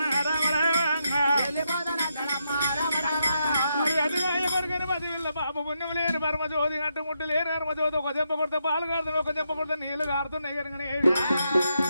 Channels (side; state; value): both; inverted; correlation -0.82